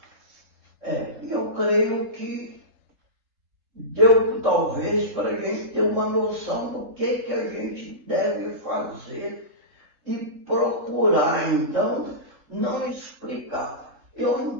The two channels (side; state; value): left; late; 3.7 ms